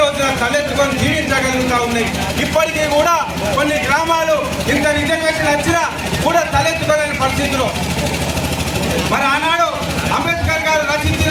తలెత్తుకొని జీవించగలుగుతూ ఉన్నాయి. ఇప్పటికీ కూడా కొన్ని గ్రామాలు ఇంత రిజర్వేషన్ వచ్చినా కూడా తలెత్తుకోలేని పరిస్థితులు. మరి ఆనాడు అంబేద్కర్ గారు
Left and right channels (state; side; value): identical; both; correlation 1.00